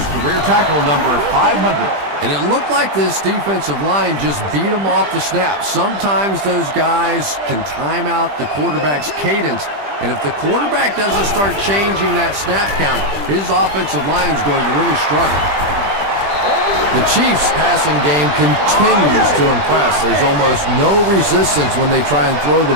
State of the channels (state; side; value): late; left; 20 ms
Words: career tackle number 500. And it looked like this defensive line just beat them off the snap. Sometimes those guys can time out the quarterback's cadence, and if the quarterback doesn't start changing that snap count, his offensive line is going to really struggle. The Chiefs' passing game continues to impress. There's almost no resistance when they try and throw